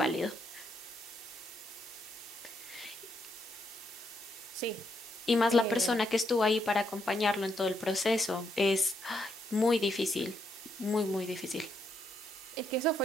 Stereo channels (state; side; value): normal; both; correlation 0.77